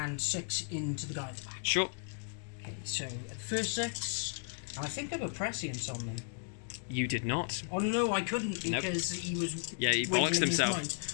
6 into the guy at the back. sure. Okay, so at the first 6, I think I put prescience on them. You did not. Oh no, I couldn't Nope. because he was. Yeah, he wiggling bollocks his himself. mind.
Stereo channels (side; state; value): right; silent; digital silence